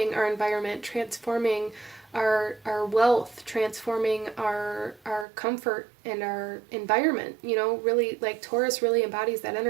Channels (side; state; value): left; drops out; at 5.2 s